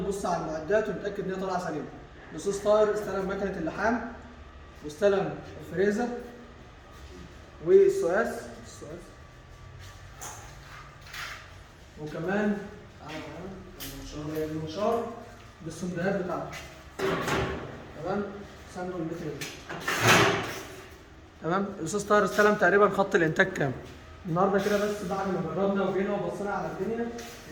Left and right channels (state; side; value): identical; both; correlation 1.00